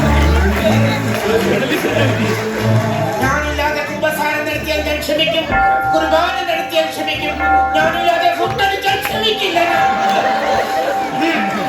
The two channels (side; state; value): both; identical; correlation 1.00